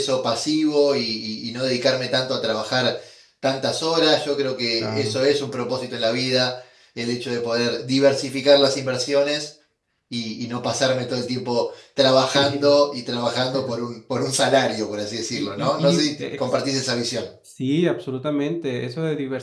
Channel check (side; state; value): both; identical; correlation 1.00